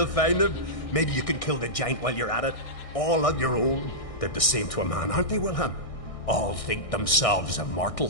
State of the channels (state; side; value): late; right; 1.6 ms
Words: find him? Maybe you can kill the giant while you're at it. All on your own. They're the same to a man, aren't they, Wilhelm? All think themselves